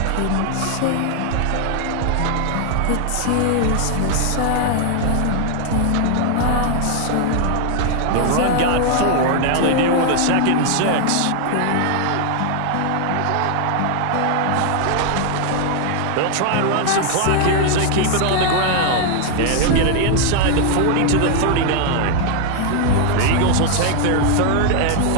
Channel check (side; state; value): both; different; correlation 0.00